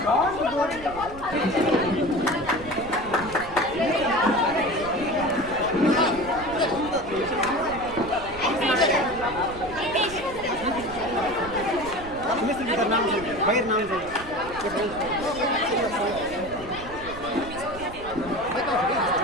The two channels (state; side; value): noise; right; rumble, 15 dB below the sound